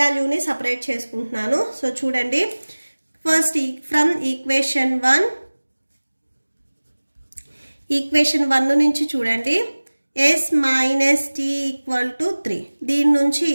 సపరేట్ చేసుకుంటున్నాను. సో చూడండి, ఫస్ట్ ఫ్రమ్ ఈక్వేషన్ 1 నుంచి చూడండి, s minus t equal to 3. దీని నుంచి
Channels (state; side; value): inverted; both; correlation -1.00